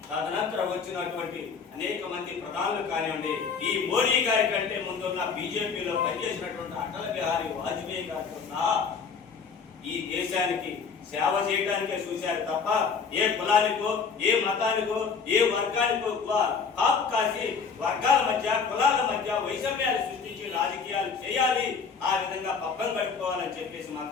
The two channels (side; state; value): right; quieter; 5.6 dB